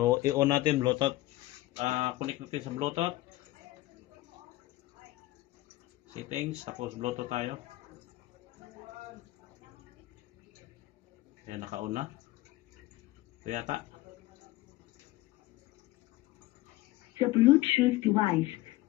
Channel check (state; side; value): quieter; right; 17.5 dB